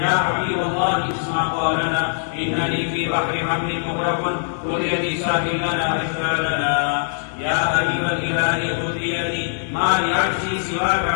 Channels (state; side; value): silent; right; digital silence